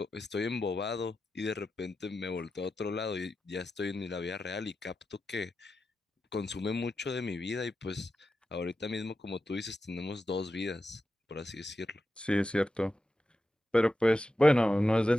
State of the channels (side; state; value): both; normal; correlation 0.90